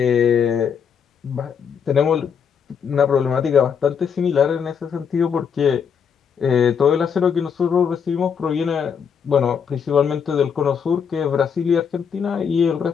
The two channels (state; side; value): quieter; right; 7.0 dB